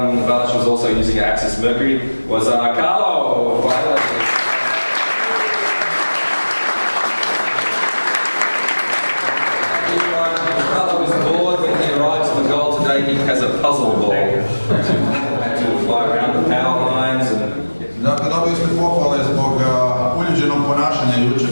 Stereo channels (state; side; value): inverted; both; correlation -1.00